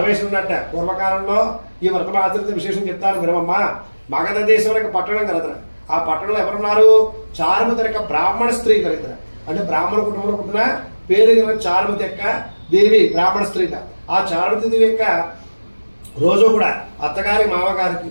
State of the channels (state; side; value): inverted; both; correlation -1.00